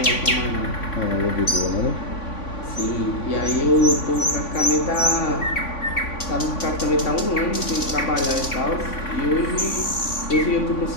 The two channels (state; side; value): late; right; 3.5 ms